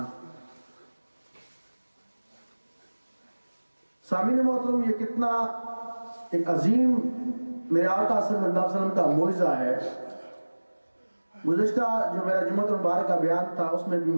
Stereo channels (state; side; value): inverted; both; correlation -1.00